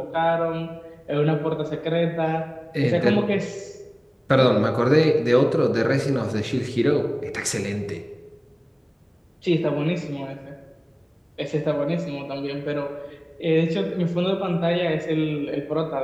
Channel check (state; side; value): identical; both; correlation 1.00